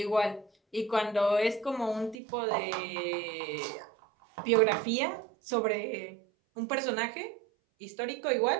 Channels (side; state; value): left; drops out; at 2.1 s